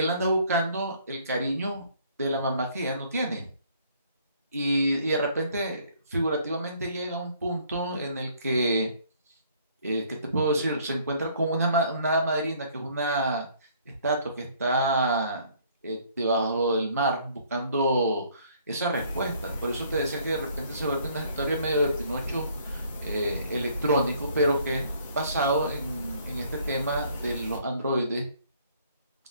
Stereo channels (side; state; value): both; inverted; correlation -0.61